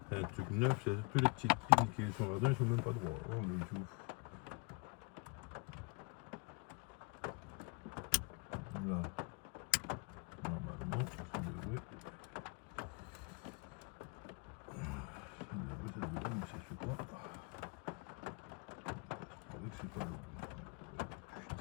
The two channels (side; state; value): right; quieter; 30.2 dB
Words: C'est un truc neuf, c'est tous les petites pins qui sont là-dedans, ils sont même pas droits. Oh le tout. Là, normalement, ça devrait, mais ça se fait pas. C'est vrai que c'est pas bon.